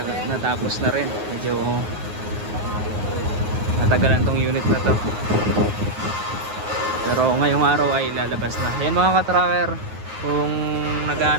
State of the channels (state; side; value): late; left; 9.5 ms